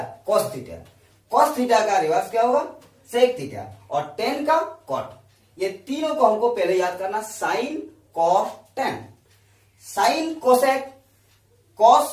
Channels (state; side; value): identical; both; correlation 1.00